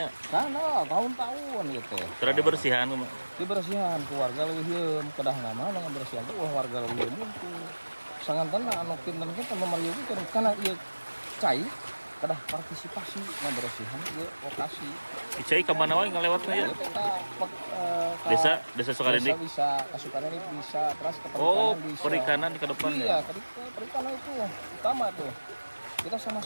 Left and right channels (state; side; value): inverted; both; correlation -1.00